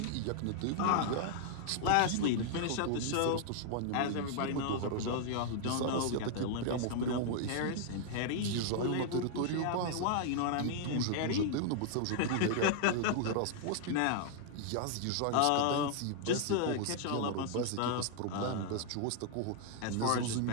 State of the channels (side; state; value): both; different; correlation -0.01